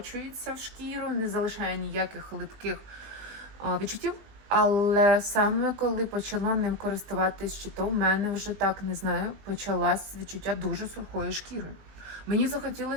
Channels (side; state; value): left; late; 20 ms